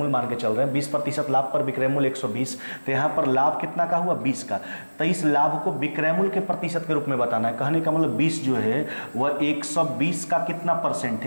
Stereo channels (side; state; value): both; inverted; correlation -1.00